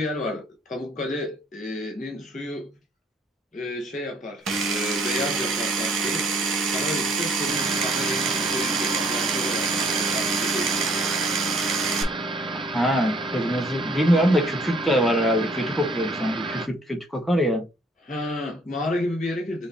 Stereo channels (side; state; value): both; normal; correlation 0.61